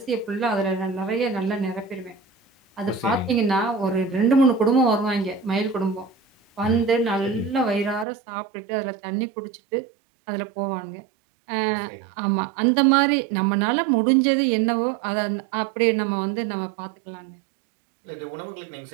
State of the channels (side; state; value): left; drops out; at 8.1 s